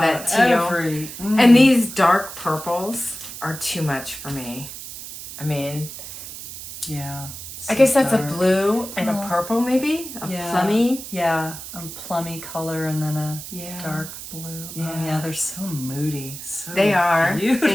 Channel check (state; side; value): noise; right; hiss, 11 dB below the sound